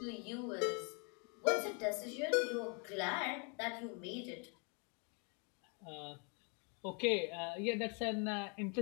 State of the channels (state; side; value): quieter; right; 35.3 dB